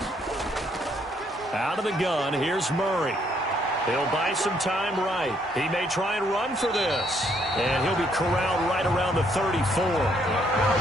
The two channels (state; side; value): normal; both; correlation 0.69